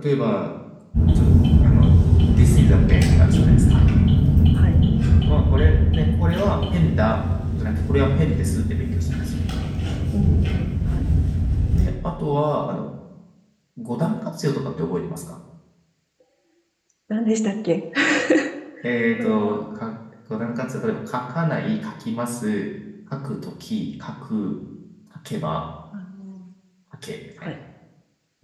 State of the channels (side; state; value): both; identical; correlation 1.00